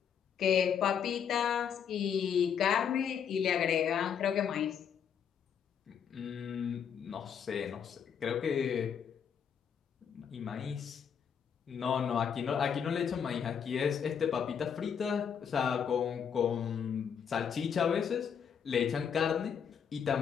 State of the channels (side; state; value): right; quieter; 7.6 dB